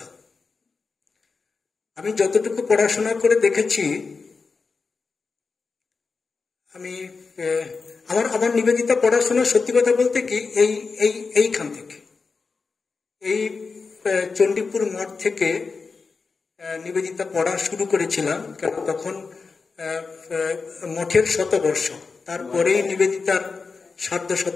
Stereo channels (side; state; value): right; quieter; 4.6 dB